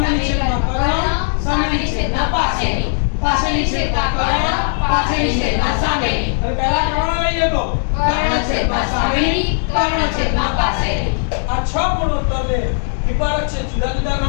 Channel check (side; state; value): right; silent; digital silence